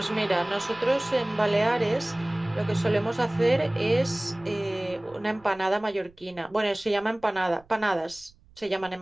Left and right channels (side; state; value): right; noise; rumble, 28 dB below the sound